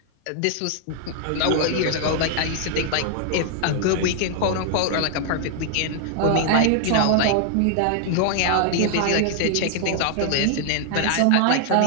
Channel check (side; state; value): both; different; correlation 0.00